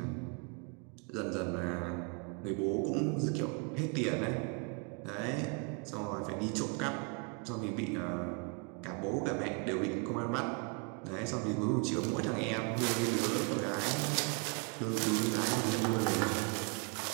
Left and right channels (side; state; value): left; quieter; 34.7 dB